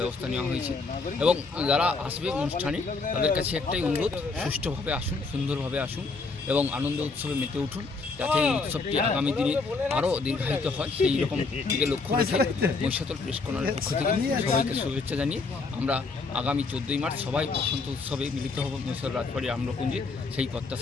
ব্যবস্থা নেওয়া হয়েছে। এবং যারা আসবে অনুষ্ঠানে তাদের কাছে একটাই অনুরোধ, সুষ্ঠুভাবে আসুন, সুন্দরভাবে আসুন এবং আনন্দ উৎসবে মেতে উঠুন, যাতে এই উৎসবটি আগামী দিনে আরও দীর্ঘায়িত হয় সেই রকম দিকে লক্ষ্য রেখে মহিষাদল প্রেস কর্নারের পক্ষ থেকে সবাইকে শুভেচ্ছা জানিয়ে আমরা আগামী 14ই মার্চ সবাই বসন্ত উৎসবে মিলিত হব মহিষাদল রাজবাড়ির আম্রকুঞ্জে, সেই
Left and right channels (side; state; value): right; quieter; 4.1 dB